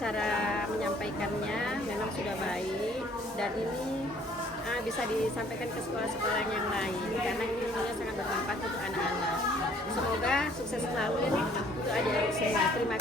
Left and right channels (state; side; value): normal; both; correlation 0.59